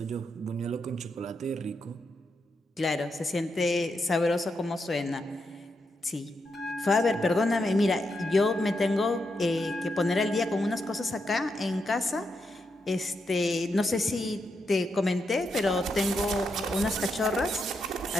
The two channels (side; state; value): both; normal; correlation 0.83